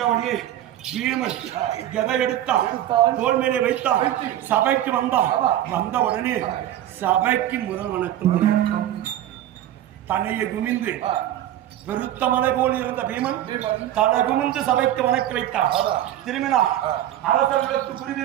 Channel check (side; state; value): left; quieter; 12.5 dB